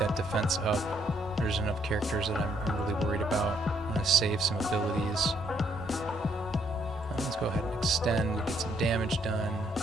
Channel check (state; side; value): normal; both; correlation 0.71